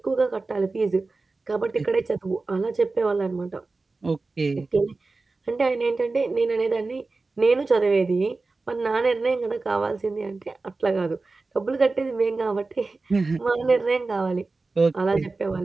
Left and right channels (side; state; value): left; quieter; 3.6 dB